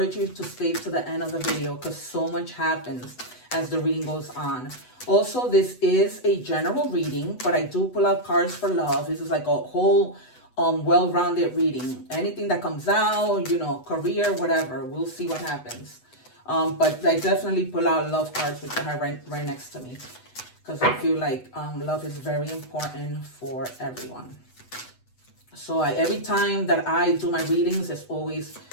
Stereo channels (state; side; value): late; right; 8.0 ms